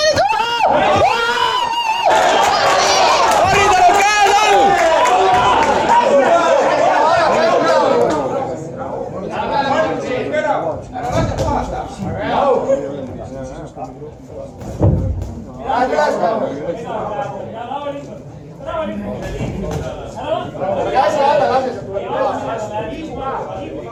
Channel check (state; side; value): identical; both; correlation 1.00